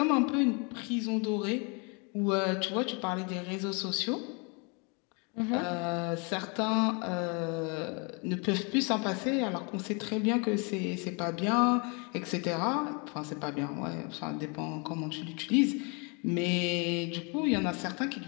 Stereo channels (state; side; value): quieter; right; 33.1 dB